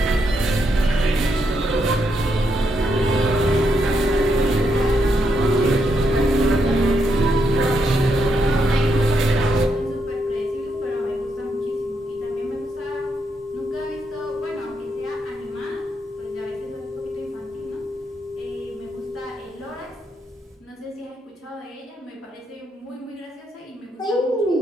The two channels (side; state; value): both; normal; correlation 0.79